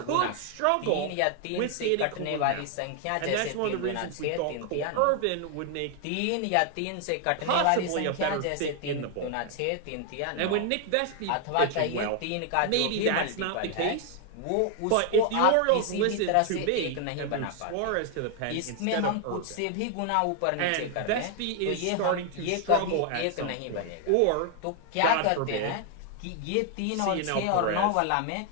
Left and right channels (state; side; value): different; both; correlation 0.00